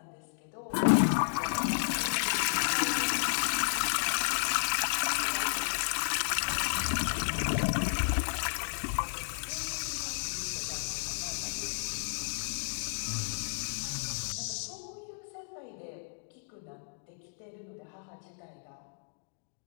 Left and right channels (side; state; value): right; silent; digital silence